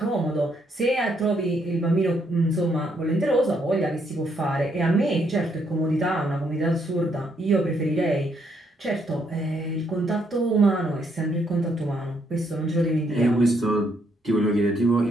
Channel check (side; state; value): both; normal; correlation 0.73